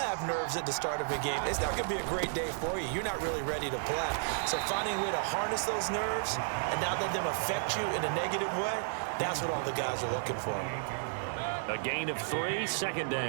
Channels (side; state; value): left; silent; 56 dB below the other